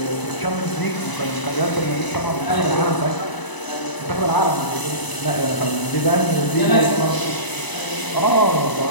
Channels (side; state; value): right; late; 1.0 ms